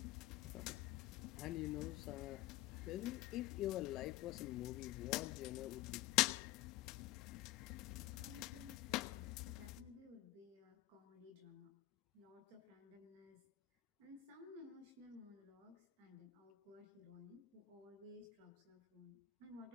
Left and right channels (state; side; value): quieter; right; 15.6 dB